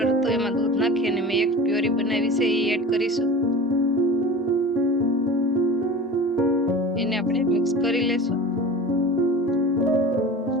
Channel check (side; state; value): both; normal; correlation 0.36